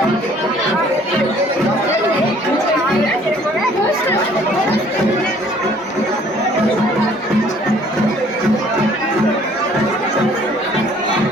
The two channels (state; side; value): normal; both; correlation 0.57